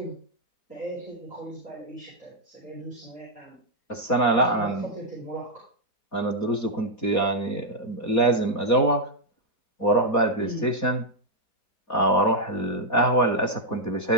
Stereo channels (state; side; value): late; right; 4.2 ms